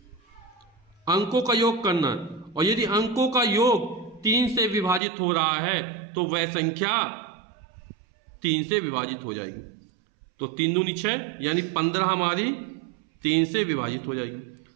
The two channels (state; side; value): drops out; left; at 5.0 s